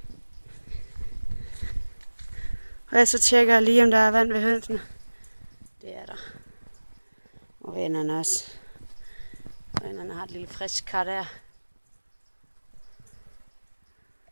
Og så tjekker jeg lige, om der er vand ved hønsene. Det er der. Og vennerne også. Vennerne har et lille frisk kar der.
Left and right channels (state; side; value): inverted; both; correlation -1.00